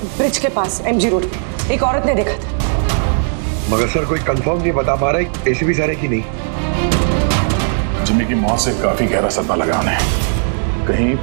ब्रिज के पास एमजी रोड पे एक औरत ने देखा था। मगर सर कोई कंफर्म नहीं बता पा रहा एसीपी सर है कि नहीं। जिम्मी की मौत से काफी गहरा सदमा लगा उन्हें। कहीं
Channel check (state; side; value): silent; left; 69 dB below the other